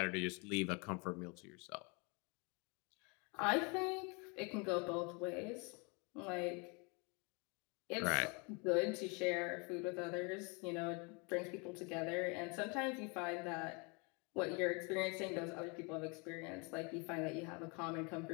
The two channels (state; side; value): quieter; right; 31.5 dB